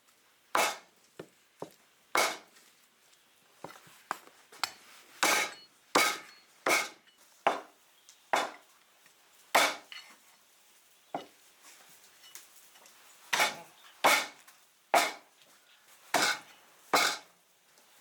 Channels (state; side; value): identical; both; correlation 1.00